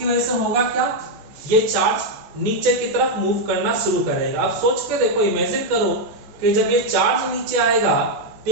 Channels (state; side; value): late; left; 14 ms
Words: वजह से होगा क्या, ये चार्ज नीचे की तरफ मूव करना शुरू करेगा। अब सोच के देखो, इमेजिन करो कि जब ये चार्ज नीचे आएगा तो